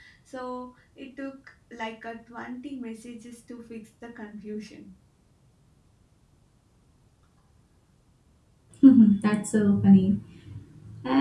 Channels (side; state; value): both; identical; correlation 1.00